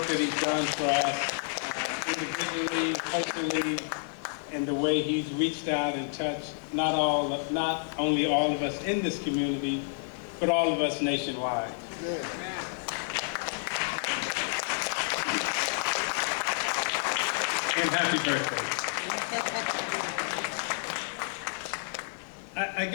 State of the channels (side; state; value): right; silent; digital silence